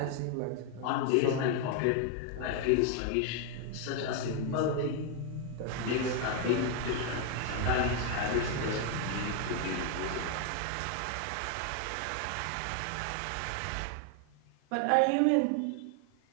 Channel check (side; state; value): both; different; correlation 0.01